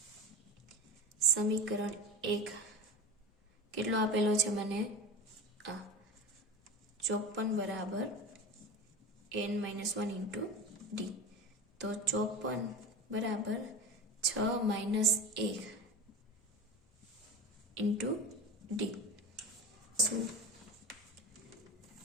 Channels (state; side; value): normal; both; correlation 0.31